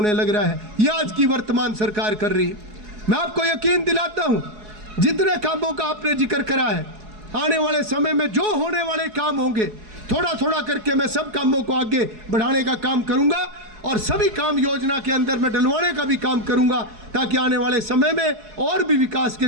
लग रहा है। ये आज की वर्तमान सरकार कर रही है। मैं आपको यकीन दिलाता हूं, जितने कामों का आपने जिक्र करा है, आने वाले समय में जो होने वाले काम होंगे, थोड़ा थोड़ा करके मैं सब कामों को आगे बढ़ाने का काम करूंगा और सभी काम योजना के अंदर मैं डलवाने का भी काम करूंगा, ताकि आने वाले समय में और भी विकास के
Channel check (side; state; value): left; late; 4.7 ms